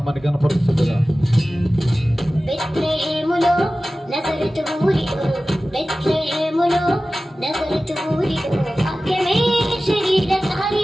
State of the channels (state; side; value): normal; both; correlation 0.96